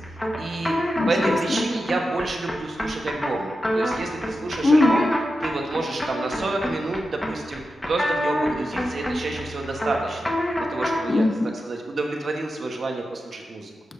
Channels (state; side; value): normal; both; correlation 0.90